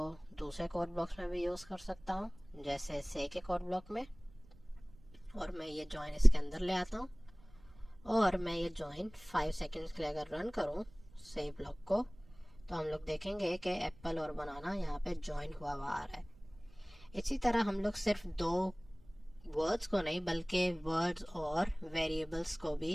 दूसरे कोड ब्लॉक्स में भी यूज़ कर सकता हूँ, जैसे से के कोड ब्लॉक में। और मैं ये जॉइन इसके अंदर ले आता हूँ और मैं ये जॉइन 5 सेकंड्स के लिए अगर रन करूँ से ब्लॉक को, तो हम लोग देखेंगे कि एप्पल और बनाना यहाँ पे जॉइन हुआ हुआ आ रहा है। इसी तरह हम लोग सिर्फ दो वर्ड्स को नहीं बल्कि वर्ड्स और वेरिएबल्स को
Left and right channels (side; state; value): right; noise; rumble, 24 dB below the sound